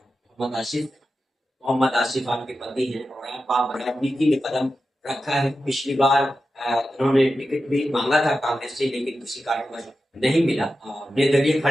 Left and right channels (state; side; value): normal; both; correlation 0.91